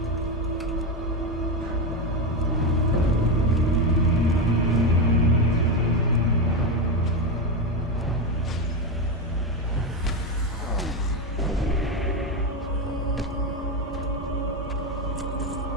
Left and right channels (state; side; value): normal; both; correlation 0.12